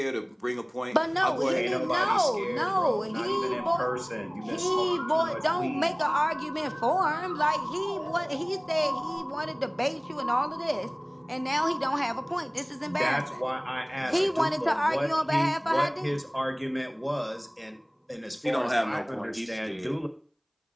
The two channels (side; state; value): both; identical; correlation 1.00